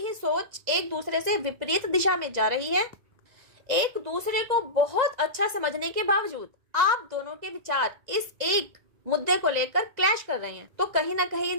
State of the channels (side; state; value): left; late; 1.9 ms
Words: सोच एक दूसरे से विपरीत दिशा में जा रही है। एक दूसरे को बहुत अच्छा समझने के बावजूद आप दोनों के विचार इस एक मुद्दे को लेकर क्लैश कर रहे हैं। तो कहीं ना कहीं